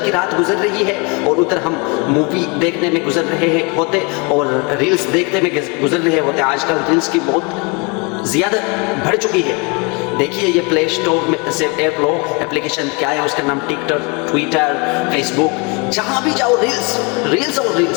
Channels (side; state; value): right; quieter; 30.6 dB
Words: کی رات گزر رہی ہے اور ادھر ہم مووی دیکھنے میں گزر رہے ہوتے اور ریلز دیکھنے میں گزر رہے ہوتے۔ آج کل ریلز کی بہت زیادہ بڑھ چکی ہے۔ دیکھیے یہ پلے اسٹور میں سے ایپ لو، اپلیکیشن کیا ہے، اس کا نام ٹک ٹاک، ٹویٹر، فیس بک، جہاں بھی جاؤ ریلز اور